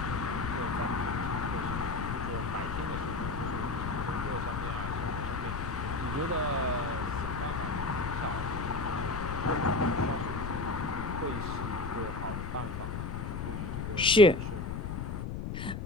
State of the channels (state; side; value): noise; left; rumble, 4 dB below the sound